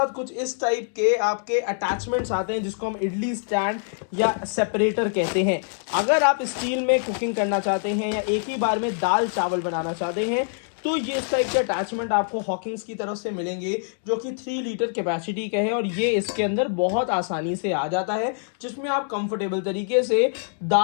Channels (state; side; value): silent; right; digital silence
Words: कुछ इस टाइप के आपके अटैचमेंट्स आते हैं, जिसको हम इडली स्टैंड या सेपरेटर कहते हैं। अगर आप स्टील में कुकिंग करना चाहते हैं या एक ही बार में दाल चावल बनाना चाहते हैं तो ये इस टाइप के अटैचमेंट आपको हॉकिंस की तरफ से मिलेंगे, जो कि 3 लीटर कैपेसिटी का है। और ये इसके अंदर बहुत आसानी से आ जाता है, जिसमें आप कंफर्टेबल तरीके से